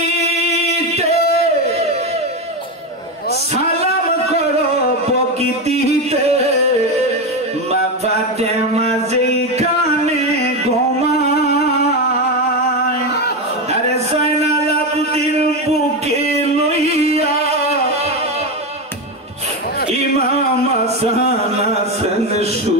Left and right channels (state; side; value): normal; both; correlation 0.14